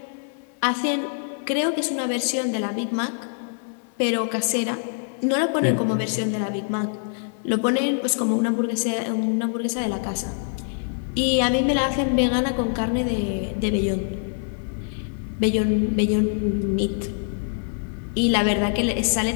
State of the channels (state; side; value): silent; right; digital silence